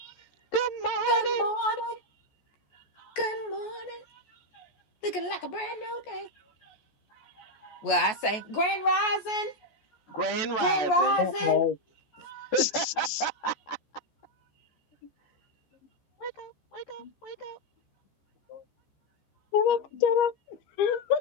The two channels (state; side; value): late; right; 14 ms